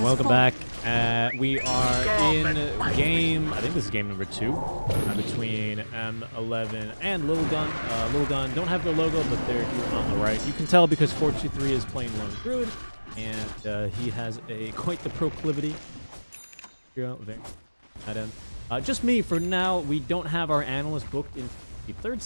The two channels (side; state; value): both; inverted; correlation -1.00